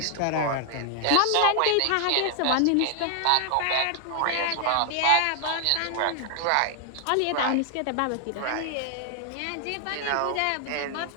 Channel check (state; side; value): different; both; correlation 0.00